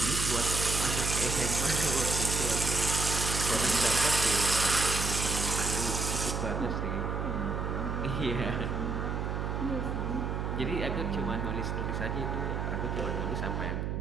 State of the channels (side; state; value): right; noise; hum, 2 dB below the sound